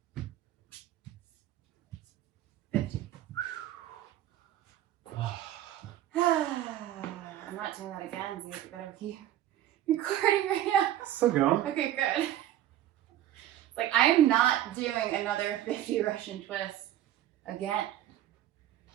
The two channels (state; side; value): quieter; left; 12.6 dB